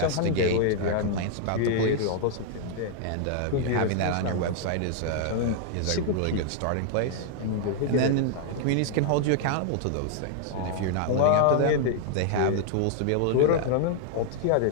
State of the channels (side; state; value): both; different; correlation 0.00